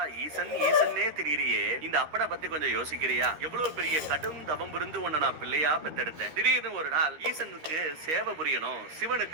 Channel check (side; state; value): left; late; 13 ms